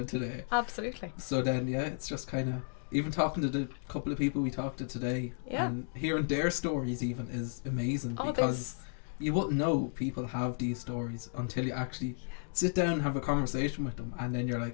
today. Absolutely. So then, it's just kind of, even talking to the couple of people we talked to today, and hearing their stories even is amazing, because you wouldn't know people have these stories until you actually sit down and have a conversation with them, and then you're like,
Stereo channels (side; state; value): right; silent; digital silence